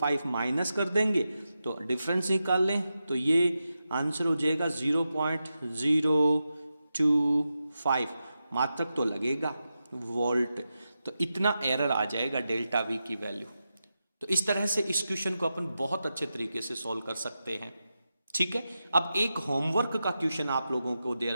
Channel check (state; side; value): inverted; both; correlation -0.90